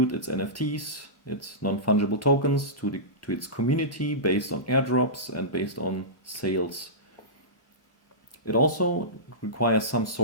its NFTs, its non-fungible tokens, to its community based on airdrops and based on sales. It also requires some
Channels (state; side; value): late; right; 3.3 ms